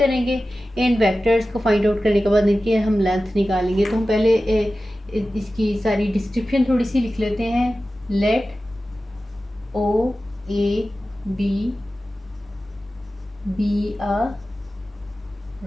इन वेक्टर्स को फाइंड आउट करने के बाद इनकी हम लेंथ निकालेंगे। तो हम पहले इसकी सारी डिस्क्रिप्शन थोड़ी सी लिख लेते हैं। Let O A B be a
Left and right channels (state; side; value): normal; both; correlation 0.95